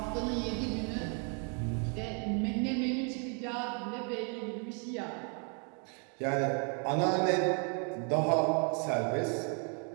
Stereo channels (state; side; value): quieter; left; 39.2 dB